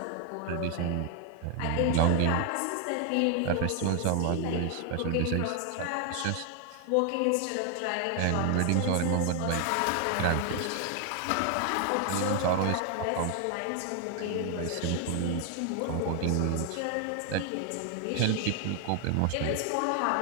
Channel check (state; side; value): different; both; correlation 0.00